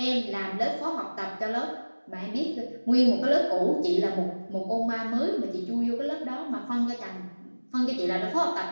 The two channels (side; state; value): both; inverted; correlation -1.00